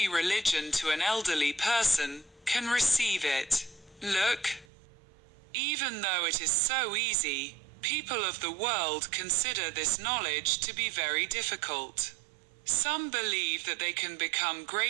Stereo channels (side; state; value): left; drops out; at 4.7 s